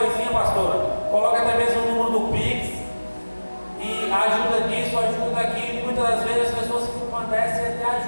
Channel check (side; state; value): both; inverted; correlation -1.00